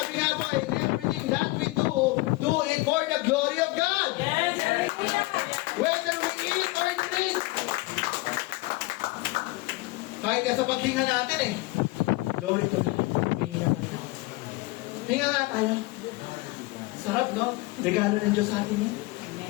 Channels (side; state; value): right; quieter; 22.2 dB